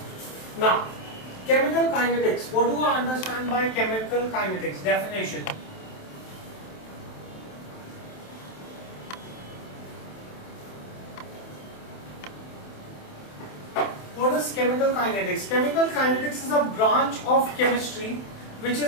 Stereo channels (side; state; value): right; late; 27 ms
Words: Now, chemical kinetics. What do I understand by chemical kinetics? Definition. What is chemical kinetics? Chemical kinetics is a branch of chemistry which